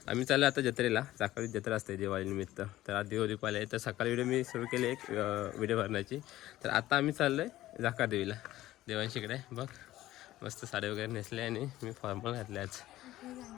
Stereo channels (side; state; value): right; quieter; 15.2 dB